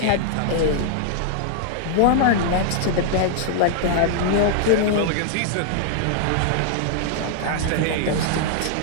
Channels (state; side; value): different; both; correlation -0.01